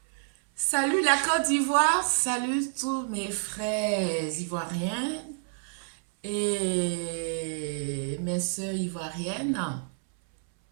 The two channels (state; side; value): silent; left; 59 dB below the other